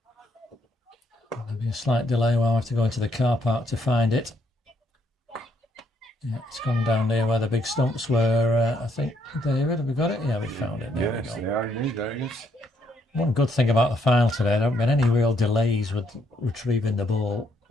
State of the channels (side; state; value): both; normal; correlation 0.72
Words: There'll be a slight delay while I have to go into the car park to find it. Yeah, it's gone down there where the big stumps were. I think, David, have we got it? Yeah, we found it. There we go. They are indeed, there it is. One good thing about the final today, there haven't been any real delays with retrieving the ball.